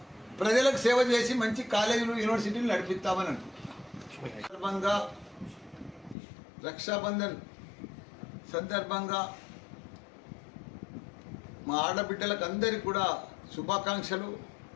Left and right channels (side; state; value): right; drops out; at 6.2 s